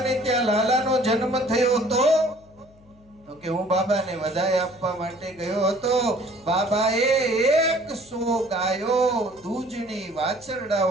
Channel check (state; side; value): noise; left; hum, 28 dB below the sound